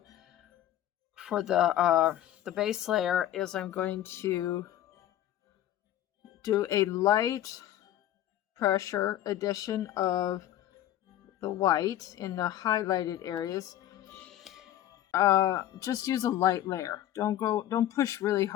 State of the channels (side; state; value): right; quieter; 12.4 dB